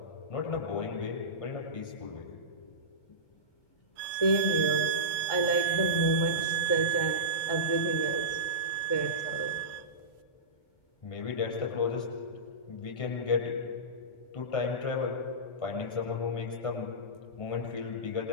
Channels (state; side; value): late; right; 1.4 ms